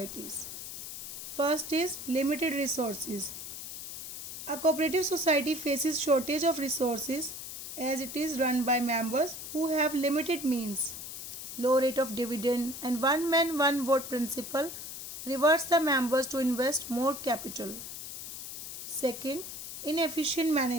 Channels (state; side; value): noise; left; hiss, 9 dB below the sound